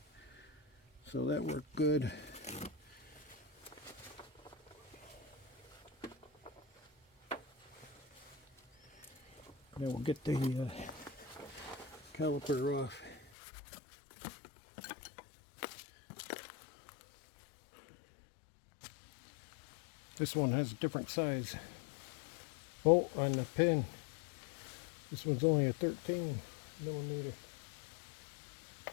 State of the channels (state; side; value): drops out; right; at 13.2 s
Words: so that worked good. Now we'll get the caliper off. This one has a different size bolt on the pin. This one's only a 13 millimeter.